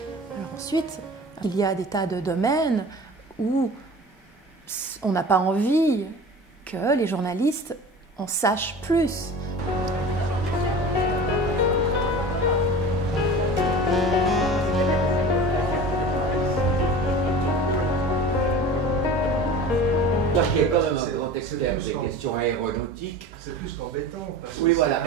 Alors ensuite, il y a des tas de domaines où on n'a pas envie que les journalistes en sachent plus. Qui est quand même un grand expert des questions aéronautiques. C'est plus qu'embêtant. Oui, voilà.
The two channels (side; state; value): both; normal; correlation 0.37